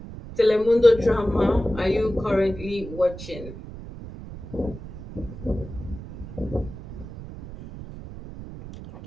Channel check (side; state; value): right; noise; rumble, 13 dB below the sound